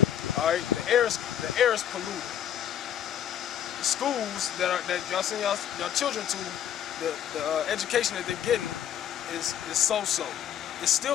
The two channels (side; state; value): right; quieter; 10.0 dB